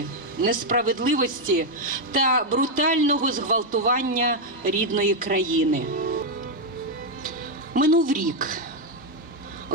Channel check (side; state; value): both; normal; correlation 0.01